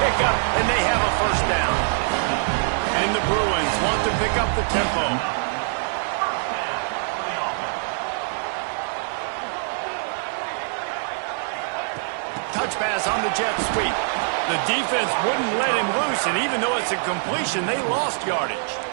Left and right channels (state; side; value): silent; left; digital silence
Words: and they have a first down. And the Bruins want to pick up the tempo. Touch pass on the jet sweep. The defense wouldn't let him loose, and even though it's a completion, they lost yardage.